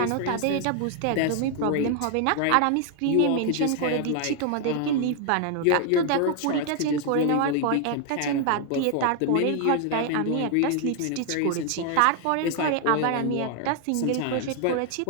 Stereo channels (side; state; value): both; different; correlation 0.00